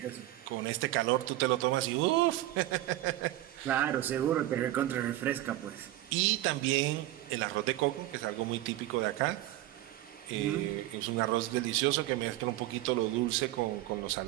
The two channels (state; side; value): quieter; left; 15.7 dB